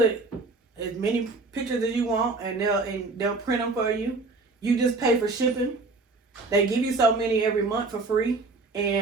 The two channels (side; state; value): left; quieter; 3.6 dB